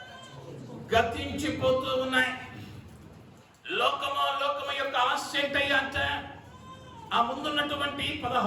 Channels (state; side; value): identical; both; correlation 1.00